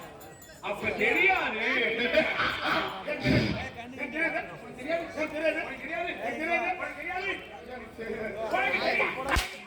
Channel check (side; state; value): both; identical; correlation 1.00